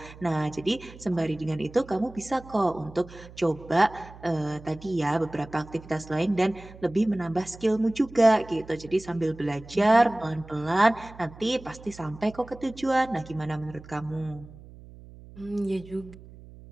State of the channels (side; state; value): right; noise; hum, 19 dB below the sound